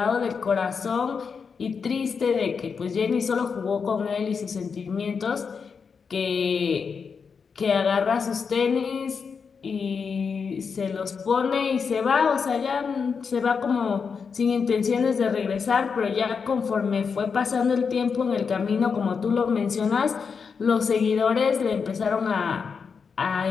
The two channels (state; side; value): quieter; right; 5.8 dB